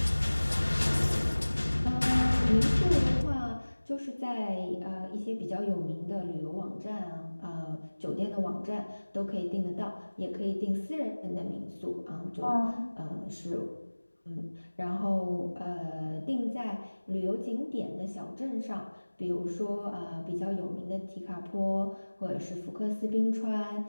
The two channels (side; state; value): both; inverted; correlation -1.00